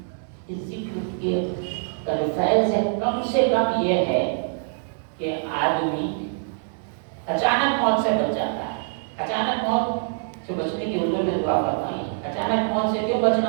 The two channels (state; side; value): silent; left; digital silence